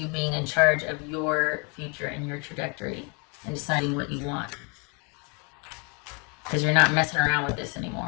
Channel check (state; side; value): quieter; right; 33.5 dB